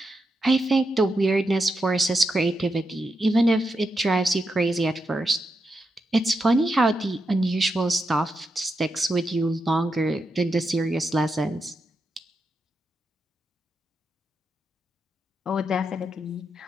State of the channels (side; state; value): both; normal; correlation 0.85